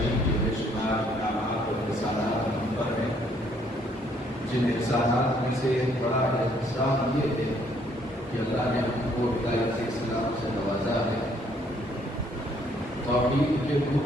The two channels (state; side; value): normal; both; correlation 0.66